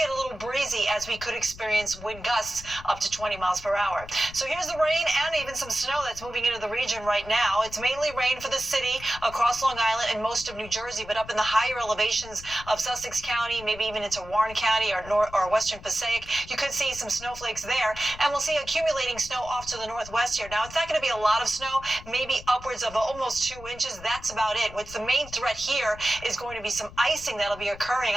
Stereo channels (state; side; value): noise; left; rumble, 17 dB below the sound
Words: a little breezy as we could experience wind gusts up to 20 miles per hour. So here's the rain and even some snow that's moving into the region right now. It's mainly rain for the city across Long Island and most of New Jersey, but up in the higher elevations of Sussex County, maybe even into Warren County or Western Passaic, you could see some snowflakes there, and we'll see accumulating snow off to the northwest here. Now, it's not going to be a lot of snow, maybe upwards of almost 2 inches. That's about it. What's the main threat here is going to be some icing that'll be occurring